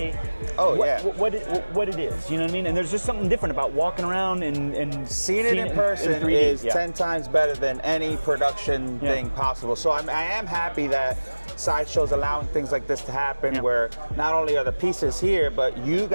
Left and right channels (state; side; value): inverted; both; correlation -1.00